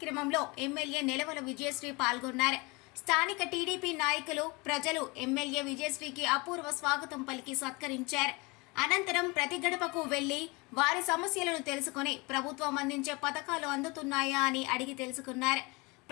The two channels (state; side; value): quieter; right; 26.5 dB